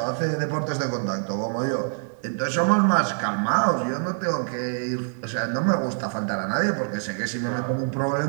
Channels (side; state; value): left; silent; digital silence